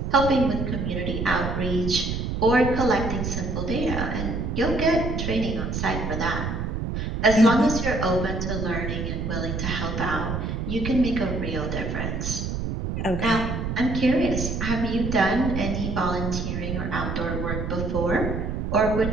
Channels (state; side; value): noise; right; rumble, 3 dB below the sound